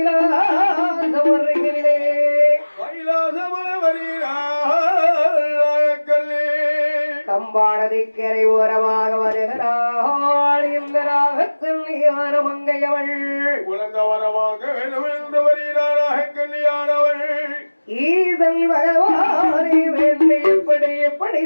கம்பாடதிக்கரை ஓரமாக வருகிறாள் இந்த நாகக்கல்லியான மங்கையவள் உலக வரமாக வேண்டும் என்று வருகிறார் நாகக்கல்லியானவள் ஈதல் பகவானை வேண்டி எப்படி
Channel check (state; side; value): inverted; both; correlation -1.00